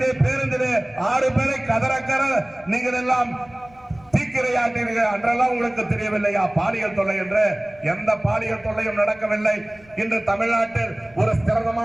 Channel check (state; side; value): noise; left; rumble, 27 dB below the sound